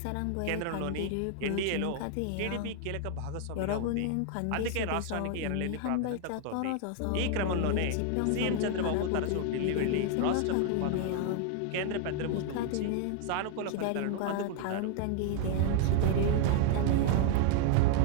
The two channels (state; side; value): different; both; correlation 0.00